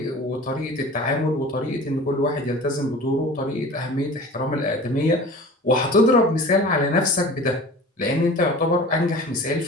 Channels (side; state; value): both; normal; correlation 0.40